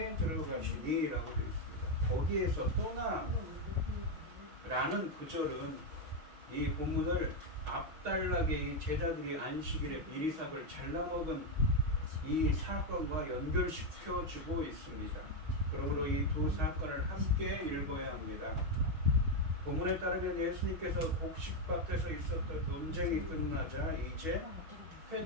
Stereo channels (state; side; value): late; left; 6.3 ms